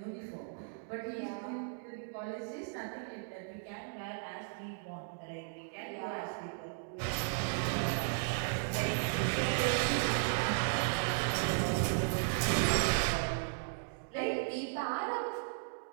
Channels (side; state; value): left; silent; digital silence